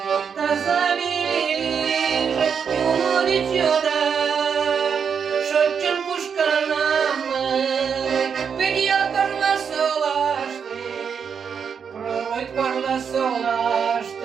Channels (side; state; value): left; quieter; 6.8 dB